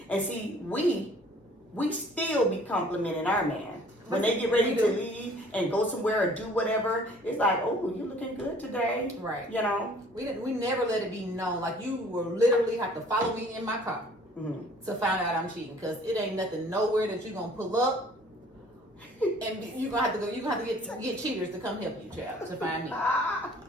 And see, we still be complimenting our man. When they get ready to leave and go somewhere or do whatever, it's like, oh, you looking good today. Right. You know? We never let it be known. Like, you will literally have to follow me in my car to find out I'm cheating, because it ain't nothing nowhere that you're gonna pull up and you're gonna have to get cheaters to come help you, child, to find me.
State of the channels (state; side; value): normal; both; correlation 0.54